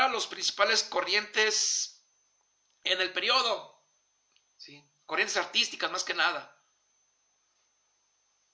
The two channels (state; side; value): identical; both; correlation 1.00